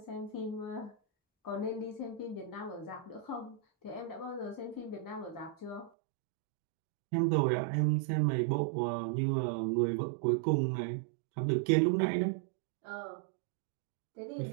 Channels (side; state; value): left; drops out; at 5.9 s